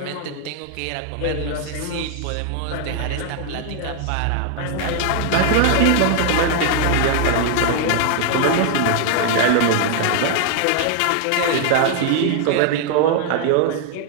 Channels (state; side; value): different; both; correlation 0.00